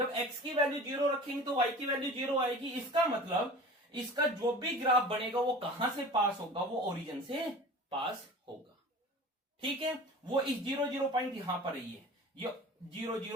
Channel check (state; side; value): normal; both; correlation 0.39